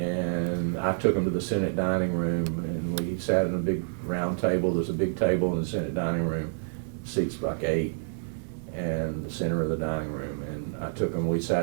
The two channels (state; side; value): silent; left; digital silence